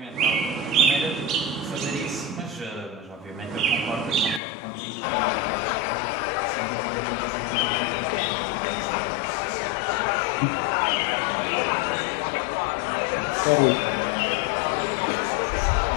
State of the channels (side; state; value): right; drops out; at 4.4 s